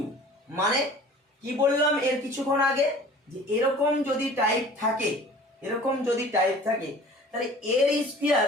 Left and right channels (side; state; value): both; normal; correlation 0.45